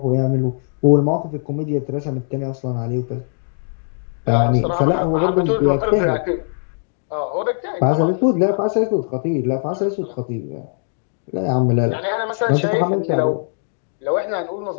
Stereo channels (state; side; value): silent; right; digital silence